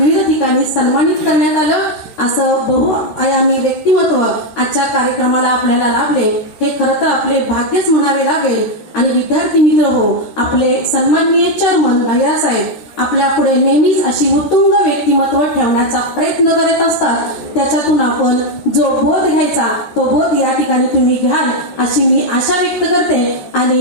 ठिकाणी सन्मानित करण्यात आलं. असं बहुआयामी व्यक्तिमत्व आजच्या कार्यक्रमाला आपल्याला लाभले, हे खरं तर आपले भाग्यच म्हणावे लागेल. आणि विद्यार्थी मित्र हो, आपले सन्माननीय चेअरमन भैयासाहेब आपल्या पुढे नेहमीच अशी उत्तुंग व्यक्तिमत्व ठेवण्याचा प्रयत्न करत असतात. त्याच्यातून आपण जो बोध घ्यायचा तो बोध या ठिकाणी तुम्ही घ्याल अशी मी आशा व्यक्त करते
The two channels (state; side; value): late; right; 14 ms